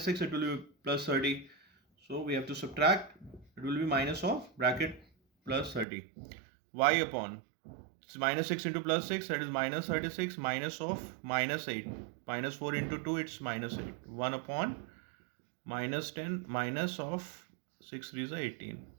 6 it will be plus 30, so we have to subtract, it will be minus of bracket plus 30. Y upon, it's minus 6 into plus 6, that is minus 36, minus of minus 8, minus 4 into 2, it's minus 8, 1 upon minus 10, minus of 6 3 is 18.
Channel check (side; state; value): left; drops out; at 5.9 s